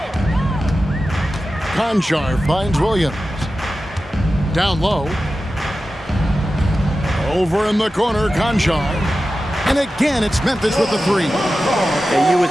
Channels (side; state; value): both; normal; correlation 0.93